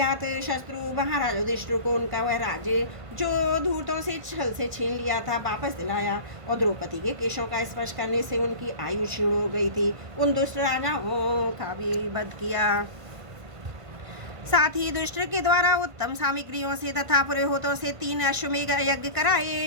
शत्रु महाराज युधिष्ठिर को उनका वह राज्य जो धूर्तों से छल से छीन लिया था वापस दिलाया, और द्रौपदी के केशों का स्पर्श करने से उनकी आयु क्षीण हो गई थी। उन दुष्ट राजाओं का भी वध किया। साथ ही युधिष्ठिर के द्वारा उत्तम सामग्रियों से तथा पुरोहितों से 3 अश्वमेध यज्ञ कराए।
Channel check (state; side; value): late; left; 1.5 ms